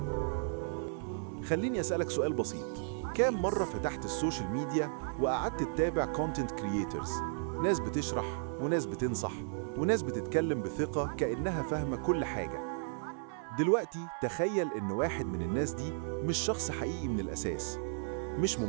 خليني أسألك سؤال بسيط. كام مرة فتحت السوشيال ميديا وقعدت تتابع كونتنت كرييترز، ناس بتشرح وناس بتنصح وناس بتتكلم بثقة كأنها فاهمة كل حاجة؟ دلوقتي تخيل إن واحد من الناس دي مش شخص حقيقي من الأساس، مش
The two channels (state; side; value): silent; left; 55 dB below the other